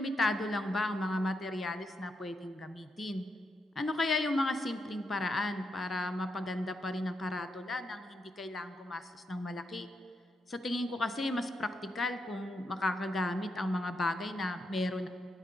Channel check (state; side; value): normal; both; correlation 0.82